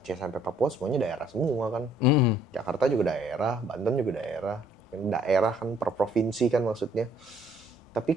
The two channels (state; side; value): normal; both; correlation 0.63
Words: sampai Papua semuanya daerah semua kan. Jakarta juga daerah, Banten juga daerah. Daerah kan per provinsi kan maksudnya. Tapi